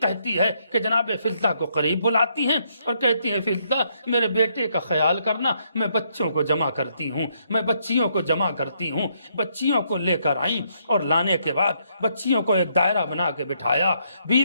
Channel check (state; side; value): inverted; both; correlation -0.73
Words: کہتی ہے کہ جناب فضہ کو قریب بلاتی ہیں اور کہتی ہیں فضہ میرے بیٹے کا خیال کرنا، میں بچوں کو جمع کرتی ہوں، میں بچیوں کو جمع کرتی ہوں۔ بچیوں کو لے کر آئیں اور لانے کے بعد بچیوں کو ایک دائرہ بنا کے بٹھایا،